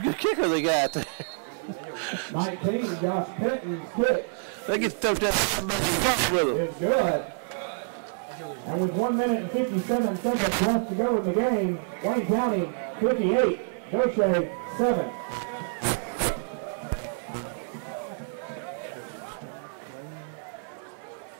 good kicker they got there. 19, Josh Penton's kick. They get to tote that with them. It's good. And with 1 minute and 57 seconds left to go in the game, Wayne County 58, Gautier 7.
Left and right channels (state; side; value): silent; left; 58 dB below the other